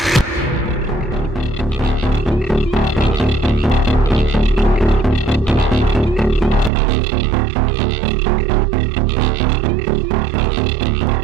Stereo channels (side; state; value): left; drops out; at 6.7 s